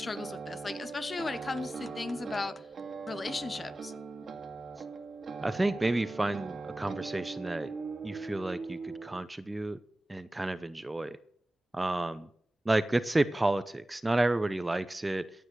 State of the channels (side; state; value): both; normal; correlation 0.96